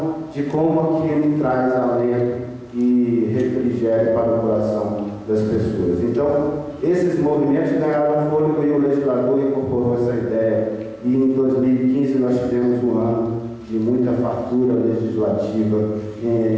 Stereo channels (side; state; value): both; identical; correlation 1.00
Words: de como aquilo traz alento e refrigério para o coração das pessoas. Então, esses movimentos ganharam fôlego e o legislador incorporou essa ideia. E em 2015 nós tivemos um ano de muita fartura legislativa